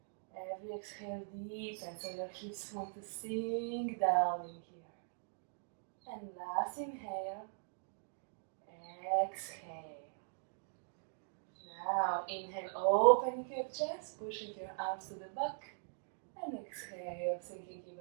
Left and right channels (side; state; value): left; silent; digital silence